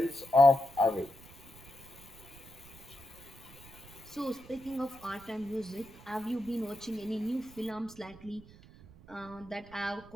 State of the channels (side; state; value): right; noise; rumble, 20 dB below the sound